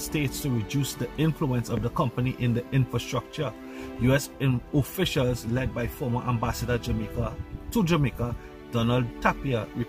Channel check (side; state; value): both; identical; correlation 1.00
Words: to reduce the influence of the company in the infrastructure. U.S. officials led by former Ambassador to Jamaica, Donald Tapia,